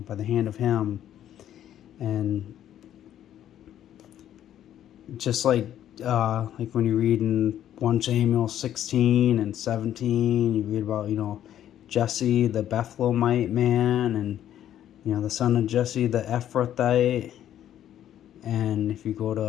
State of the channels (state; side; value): quieter; right; 11.1 dB